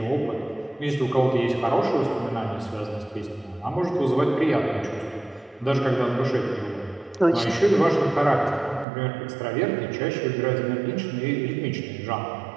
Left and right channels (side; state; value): left; drops out; at 8.8 s